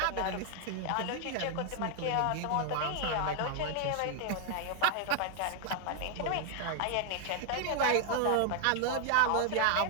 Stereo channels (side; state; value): both; different; correlation 0.00